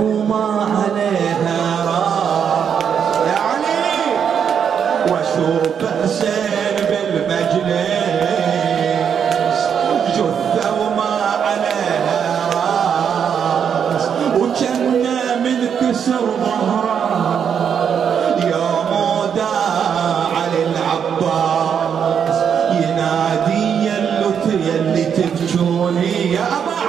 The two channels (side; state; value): left; quieter; 7.6 dB